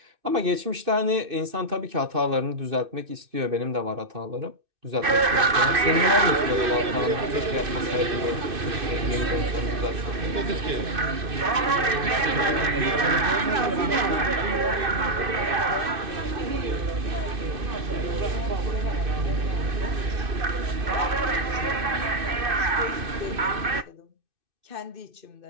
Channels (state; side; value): late; left; 2.6 ms